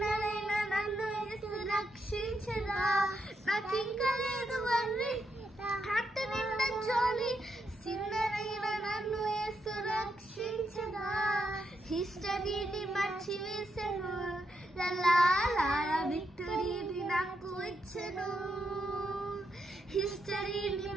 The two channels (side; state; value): both; normal; correlation 0.82